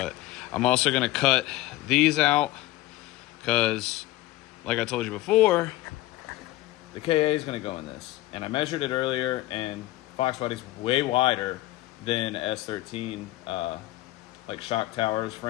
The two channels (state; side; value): quieter; right; 16.8 dB